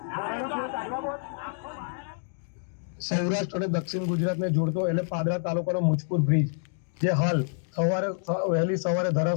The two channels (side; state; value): right; silent; digital silence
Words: સૌરાષ્ટ્ર અને દક્ષિણ ગુજરાતને જોડતો એટલે પાદરા તાલુકાનો મુજપુર બ્રિજ, જે હાલ વહેલી સવારે